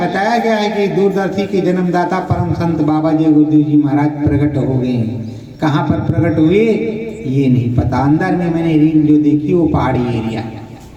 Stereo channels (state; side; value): identical; both; correlation 1.00